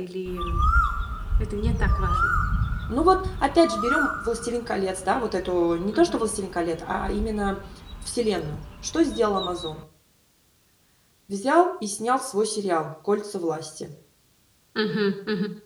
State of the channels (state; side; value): identical; both; correlation 1.00